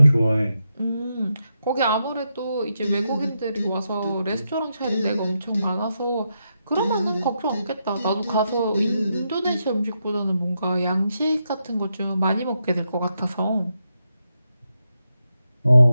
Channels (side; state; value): both; inverted; correlation -0.84